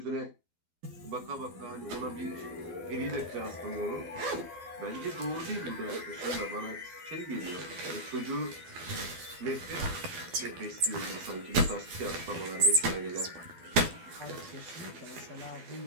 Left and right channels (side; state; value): left; late; 12 ms